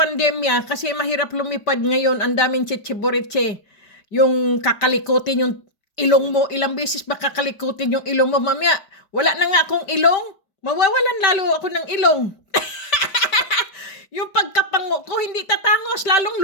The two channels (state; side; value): late; right; 5.1 ms